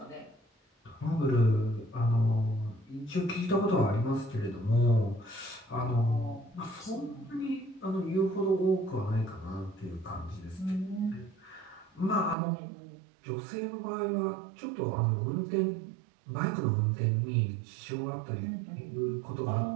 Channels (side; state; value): left; drops out; at 12.4 s